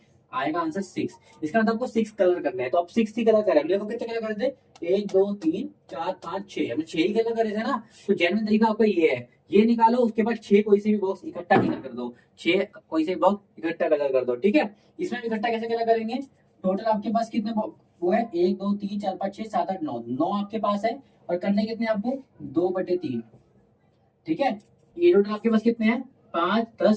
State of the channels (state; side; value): identical; both; correlation 1.00